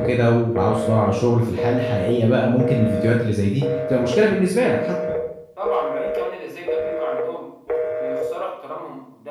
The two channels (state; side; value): identical; both; correlation 1.00